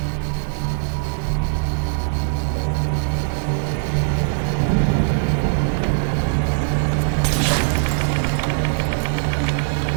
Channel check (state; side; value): silent; left; 65 dB below the other